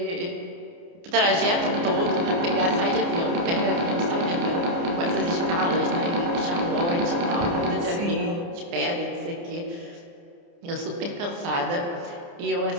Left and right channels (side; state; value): left; late; 29 ms